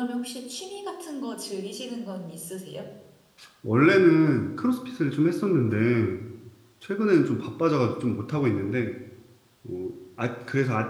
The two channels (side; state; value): both; identical; correlation 1.00